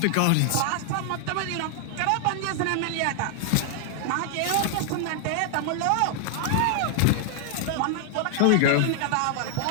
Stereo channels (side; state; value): both; different; correlation 0.00